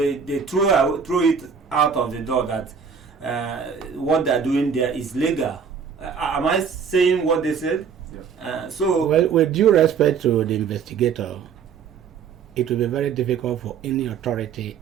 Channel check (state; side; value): quieter; left; 6.5 dB